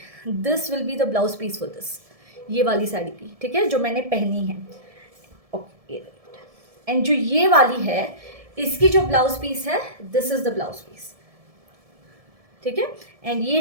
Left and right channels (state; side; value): late; left; 1.7 ms